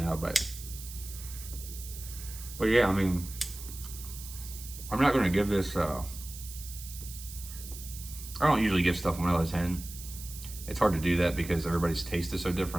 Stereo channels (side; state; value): right; noise; hiss, 13 dB below the sound